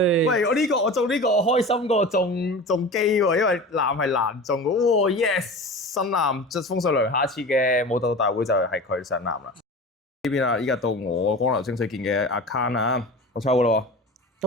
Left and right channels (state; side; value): normal; both; correlation 0.34